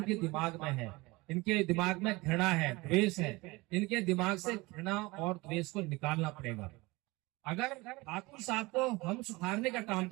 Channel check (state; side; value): quieter; left; 22.8 dB